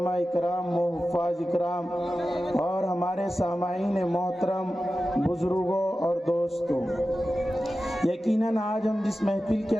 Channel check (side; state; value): both; normal; correlation 0.94